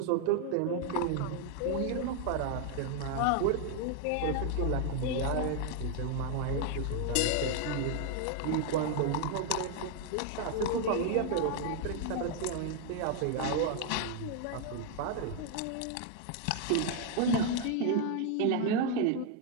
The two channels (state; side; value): different; both; correlation 0.01